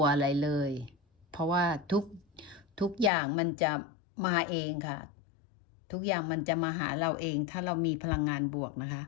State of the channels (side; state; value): right; drops out; at 3.1 s